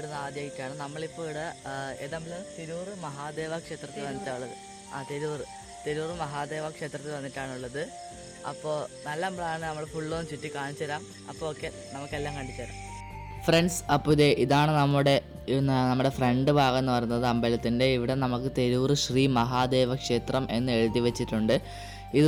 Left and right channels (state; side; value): identical; both; correlation 1.00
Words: ആദ്യമായിട്ടാണ്. നമ്മളിപ്പോൾ ഇവിടെ ഏതെങ്കിലും തിരൂർ മഹാദേവ ക്ഷേത്രത്തിൽ വന്നിട്ടുള്ളത്. തിരൂർ മഹാദേവ ക്ഷേത്രത്തിൽ വന്നിട്ടാണുള്ളത്. അപ്പോൾ നല്ല അമ്പലമാണ്. നമ്മൾ ഫുള്ളൊന്നും ചുറ്റി കാണിച്ചു തരാം. അപ്പോൾ ഓക്കെ, നമുക്കെല്ലാം കണ്ടിച്ചു തരാം ഫ്രണ്ട്സ്. അപ്പോൾ ഇതാണ് നമ്മുടെ ഫ്രണ്ട് ഭാഗം എന്ന് പറയുന്നത് അമ്പലത്തിൻ്റെ. ഇവിടെ നമുക്ക് തിരൂർ ശ്രീ മഹാദേവ ക്ഷേത്രം എന്ന് എഴുതി വെച്ചിട്ടുണ്ട്. ഇത്